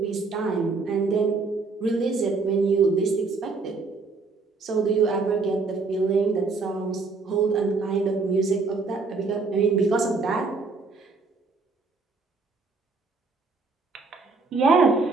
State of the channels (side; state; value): left; quieter; 4.1 dB